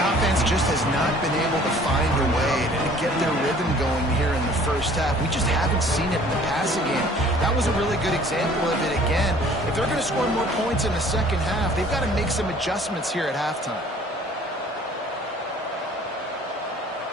offense just has not been able to find a way to get their rhythm going here in the 1st half. We just haven't seen it in the passing game. That was a really good example of it again. If they're going to score more points in the 2nd half, they've got to make some adjustments here at halftime.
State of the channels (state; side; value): normal; both; correlation 0.53